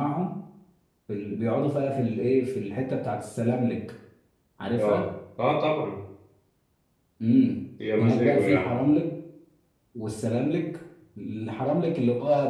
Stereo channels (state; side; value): identical; both; correlation 1.00